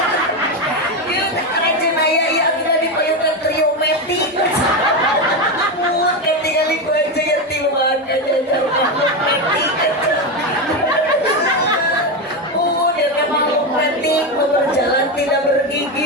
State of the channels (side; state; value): both; normal; correlation 0.13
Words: Yuk rajin ayah ya kita di payung dan triometik. Kan tinggal ibu aja yang timuan aja triometik. Berjalan tidak